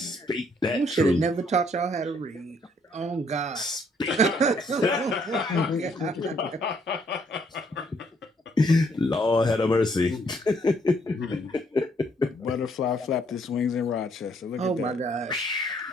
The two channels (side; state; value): both; normal; correlation 0.68